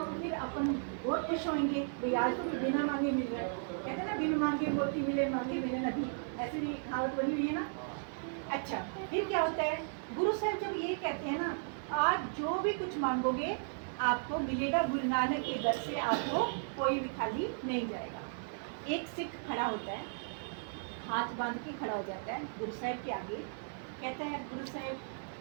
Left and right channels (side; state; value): left; silent; digital silence